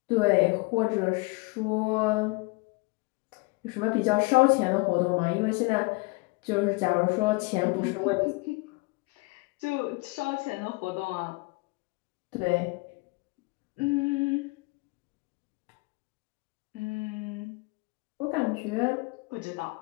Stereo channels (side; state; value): right; quieter; 27.0 dB